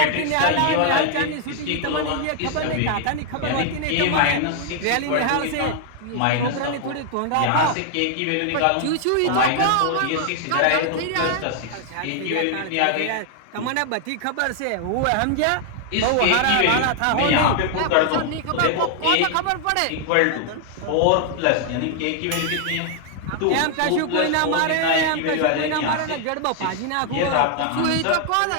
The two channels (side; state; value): both; different; correlation 0.00